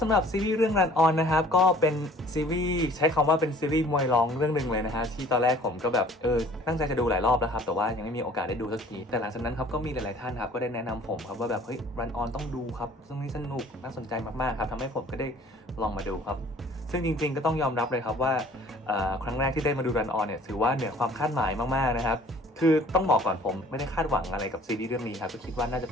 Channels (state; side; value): normal; both; correlation 0.52